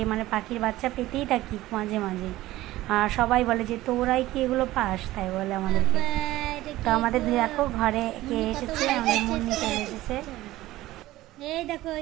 মানে পাখির বাচ্চা পেতেই থাকি মাঝে মাঝে। আর সবাই বলে যে তোরাই কি এগুলো পাস, তাই বলে আমাদেরকে। তো আমাদের দেখো ঘরে কে এসেছে, আমাদের মুন্নি চলে এসেছে। এই দেখো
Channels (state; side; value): quieter; left; 16.5 dB